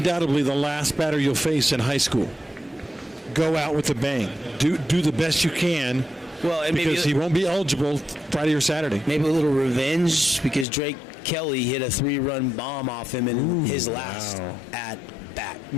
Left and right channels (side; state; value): right; drops out; at 10.7 s